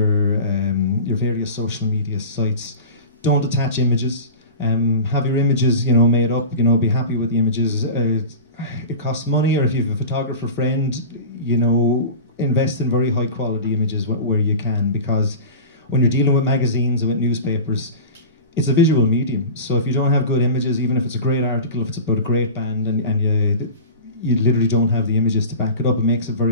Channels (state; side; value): inverted; both; correlation -0.33